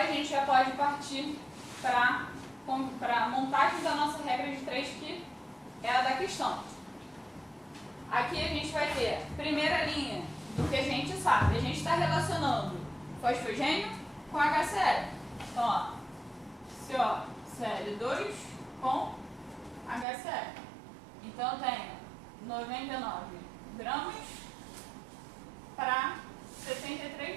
a gente já pode partir para a montagem da nossa regra de 3, que é a da questão. Aqui a gente vai ter primeira linha do que a gente sabe. A gente está relacionando fosfogênio com HCl. Então, ó, COCl2 com HCl. Então, eu tenho 99 gramas para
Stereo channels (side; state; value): left; drops out; at 20.1 s